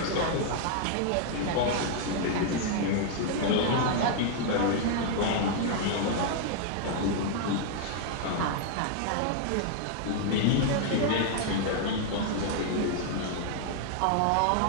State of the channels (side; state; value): both; different; correlation -0.01